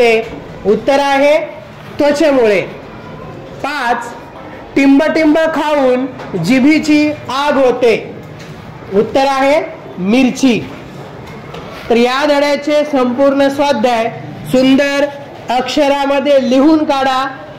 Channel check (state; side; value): identical; both; correlation 1.00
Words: उत्तर आहे त्वचेमुळे. 5. टिंबटिंब खाऊन जिभेची आग होते. उत्तर आहे मिरची. तर या धड्याचे संपूर्ण स्वाध्याय सुंदर अक्षरामध्ये लिहून काढा